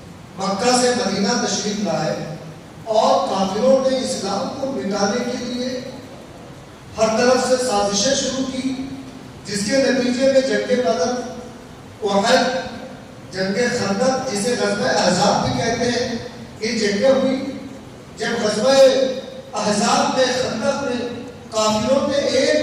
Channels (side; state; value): both; identical; correlation 1.00